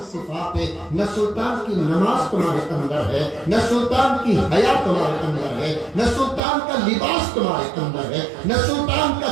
صفات ہے؟ نہ سلطان کی نماز تمہارے اندر ہے، نہ سلطان کی حیا تمہارے اندر ہے، نہ سلطان کا لباس تمہارے اندر ہے، نہ سلطان کا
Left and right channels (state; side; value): drops out; left; at 6.4 s